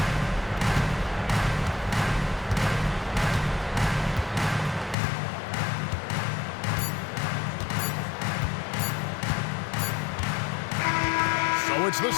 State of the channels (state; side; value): drops out; right; at 5.0 s